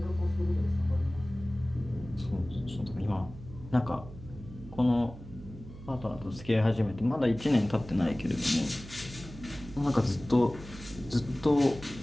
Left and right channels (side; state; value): right; noise; hum, 15 dB below the sound